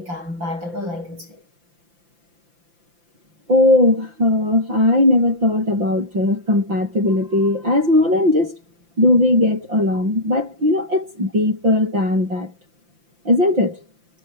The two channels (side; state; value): left; late; 5.8 ms